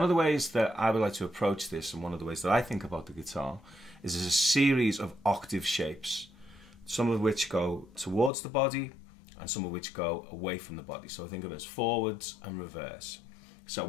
of the ways that I would like to approach this, and one of the ways that I think about the guitar, is there's a series of octave shapes, some of which go towards the body and some of which go away from the body. So I think of it as forwards and reverse. So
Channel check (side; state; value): right; drops out; at 8.3 s